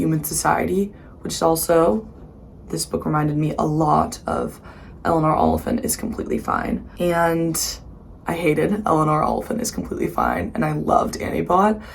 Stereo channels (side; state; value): both; identical; correlation 1.00